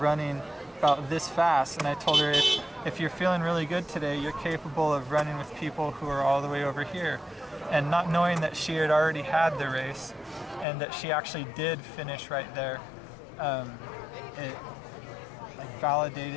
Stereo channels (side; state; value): right; drops out; at 10.7 s